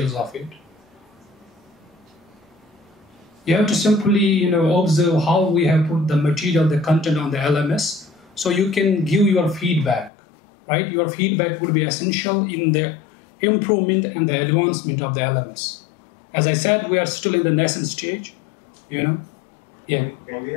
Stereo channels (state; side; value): drops out; right; at 10.1 s